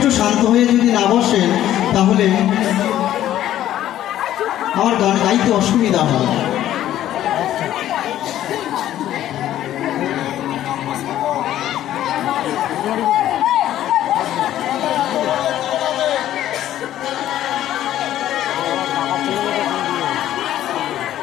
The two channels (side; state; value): right; quieter; 12.5 dB